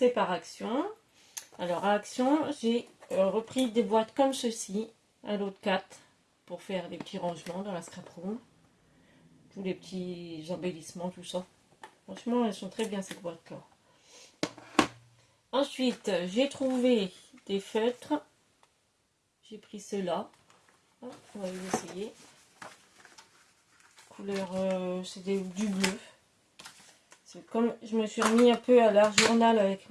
par Action. Alors, à Action, j'ai repris des boîtes comme ceci, à l'autre 4, pour faire des petits rangements dans la scrap room. Tous les petits embellissements, tout ça. Franchement, elles sont très bien ces boîtes-là. Ensuite, j'ai trouvé des feutres. J'ai pris ceux-là. On va les essayer. Couleur, c'est du bleu. C'est comme je me suis remis un peu à l'art journal avec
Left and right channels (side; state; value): both; identical; correlation 1.00